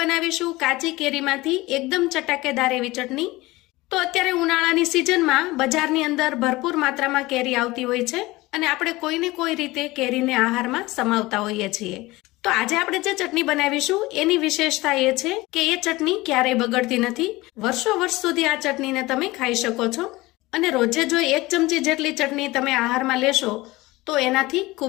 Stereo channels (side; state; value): right; quieter; 20.2 dB